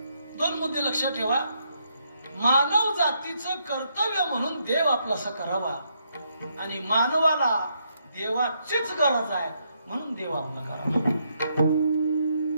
2 मुद्दे लक्षात ठेवा. मानव जातीचं कर्तव्य म्हणून देव आपलासा करावा आणि मानवाला देवाचीच गरज आहे म्हणून देव आपला करावा.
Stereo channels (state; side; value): inverted; both; correlation -0.76